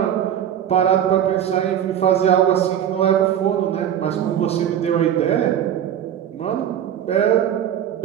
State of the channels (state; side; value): quieter; left; 9.9 dB